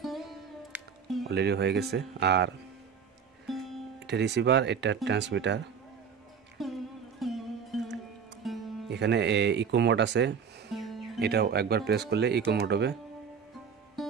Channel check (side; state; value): left; quieter; 6.7 dB